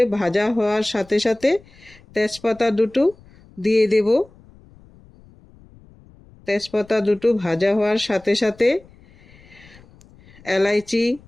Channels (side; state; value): left; noise; rumble, 26 dB below the sound